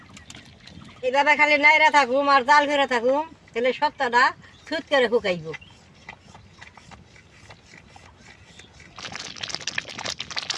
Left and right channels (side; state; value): both; identical; correlation 1.00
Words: এইভাবে খালি নাইরা থাকুম আর জাল করে থাকুম, তাহলে সত্তাটা ছুট করে শুকাইব।